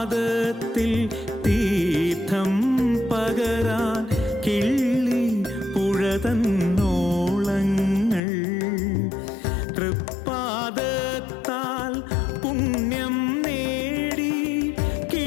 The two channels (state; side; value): drops out; right; at 8.2 s